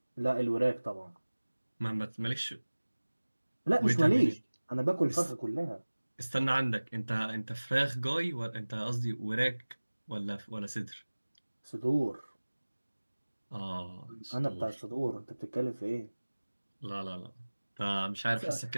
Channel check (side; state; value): both; inverted; correlation -1.00